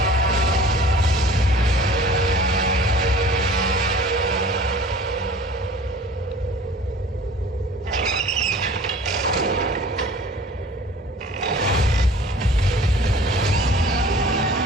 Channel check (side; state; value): both; normal; correlation 0.47